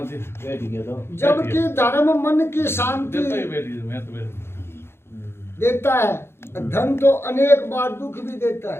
जी बैठ गया तो जबकि धर्म मन की शांति देता ही बैठ गया मैं तो बैठ देता है धन तो अनेक बार दुख भी देता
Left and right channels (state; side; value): late; right; 0.12 ms